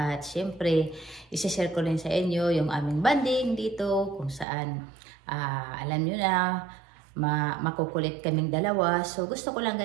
syempre, isi-share ko rin sa inyo yung aming banding dito kung saan, alam nyo na, makukulit kaming dalawa. So, gusto ko lang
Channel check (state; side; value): drops out; left; at 4.5 s